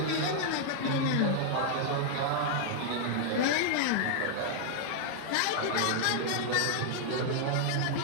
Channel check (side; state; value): both; different; correlation -0.01